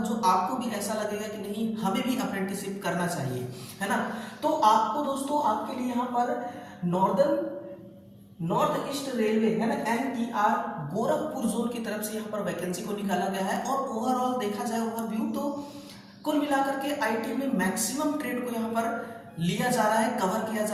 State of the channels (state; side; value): identical; both; correlation 1.00